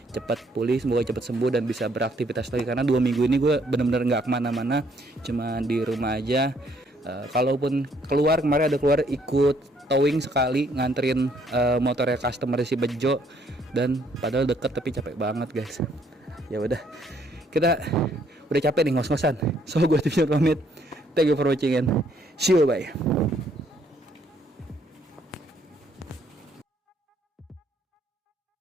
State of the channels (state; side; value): normal; both; correlation 0.67